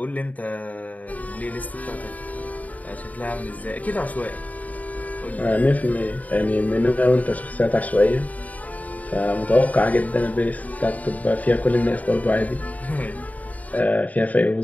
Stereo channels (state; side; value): late; right; 0.073 ms